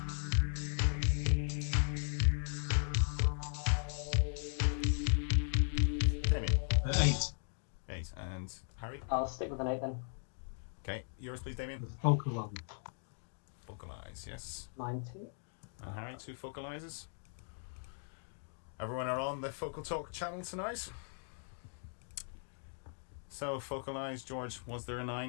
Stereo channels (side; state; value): right; silent; digital silence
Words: Damien. 8. 8 and Harry. I'll stick with an 8 then. Okay, yours please, Damien. The focal one. Focalize, yes. Mine too. And Harry, 2 focalizes. Everyone are on the Focal Talk channel tonight. So, focalize, George, was there a